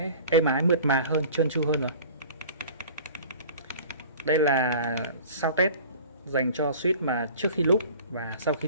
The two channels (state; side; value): inverted; both; correlation -0.44